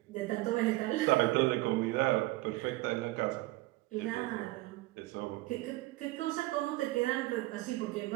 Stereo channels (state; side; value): quieter; left; 19.6 dB